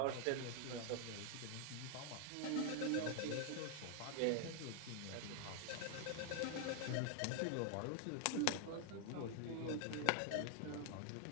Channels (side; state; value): both; different; correlation 0.00